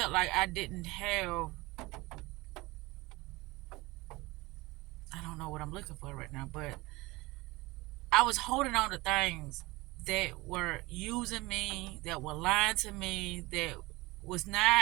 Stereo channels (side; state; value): left; quieter; 21.9 dB